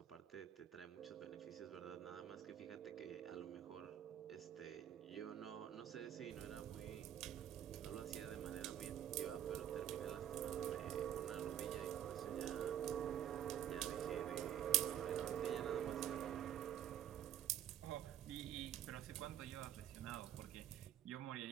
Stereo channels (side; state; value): left; quieter; 10.8 dB